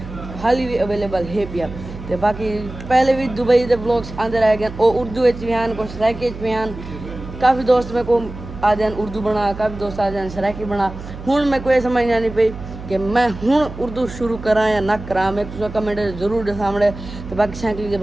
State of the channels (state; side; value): noise; right; hum, 12 dB below the sound